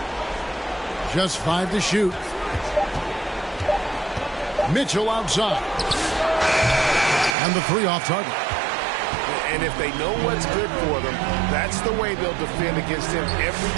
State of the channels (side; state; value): left; drops out; at 7.4 s